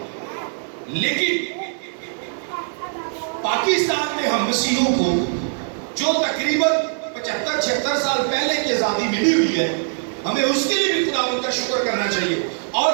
لیکن پاکستان میں ہم مسیحوں کو جو تقریباً 75-76 سال پہلے کی آزادی ملی ہوئی ہے، ہمیں اس کے لیے بھی خداوند کا شکر کرنا چاہیے، اور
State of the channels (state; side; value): silent; left; digital silence